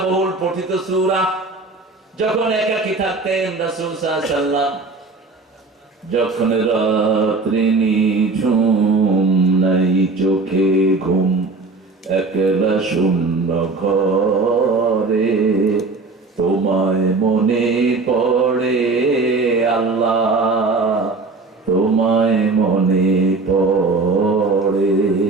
বহুল পঠিত সূরা। যখন একাকী থাকতেন রাসূল সাল্লাল্লাহু আলাইহি ওয়াসাল্লাম, যখন রাত্রি নিঝুম নাই চোখে ঘুম, একলা শূন্য ঘরে তোমায় মনে পড়ে আল্লাহ, তোমায় মনে পড়ে।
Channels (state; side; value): quieter; left; 3.7 dB